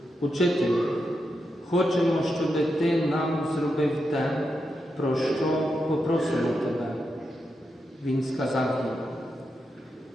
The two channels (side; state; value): both; normal; correlation 0.86